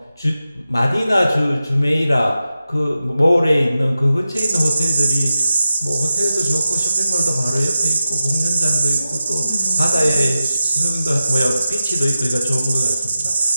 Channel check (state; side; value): inverted; both; correlation -0.92